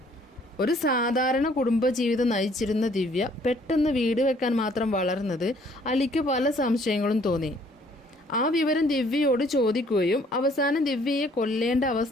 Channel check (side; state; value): both; normal; correlation 0.61